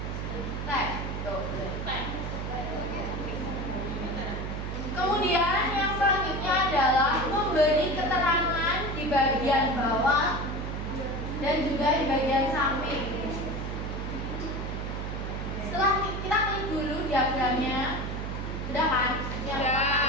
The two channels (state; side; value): noise; right; hum, 4 dB below the sound